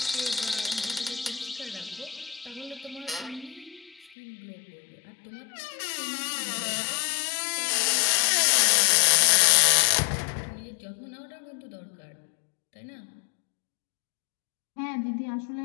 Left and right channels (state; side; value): drops out; right; at 4.2 s